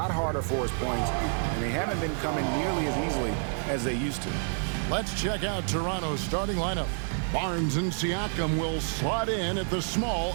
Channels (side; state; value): left; silent; 59 dB below the other